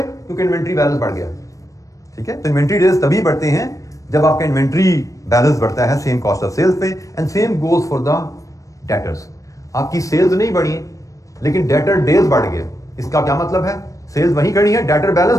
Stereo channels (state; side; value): late; right; 0.16 ms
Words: इन्वेंट्री बैलेंस बढ़ गया। ठीक है, तो इन्वेंट्री डेज तभी बढ़ते हैं जब आपका इन्वेंट्री बैलेंस बढ़ता है सेम कॉस्ट ऑफ सेल्स पे, and same goes for the debtors. आपकी सेल्स नहीं बढ़ी लेकिन डेटर डेज बढ़ गए, इसका क्या मतलब है? सेल्स वहीं खड़ी है, डेटर बैलेंस